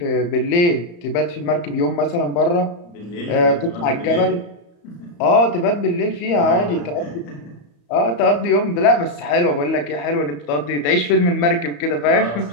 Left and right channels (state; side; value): late; right; 34 ms